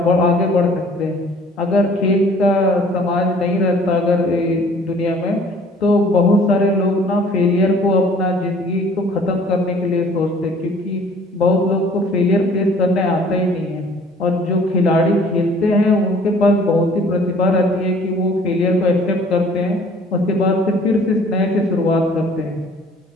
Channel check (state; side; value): normal; both; correlation 0.54